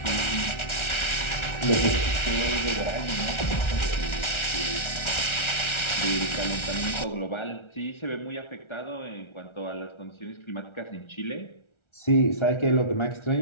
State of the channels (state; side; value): late; right; 1.3 ms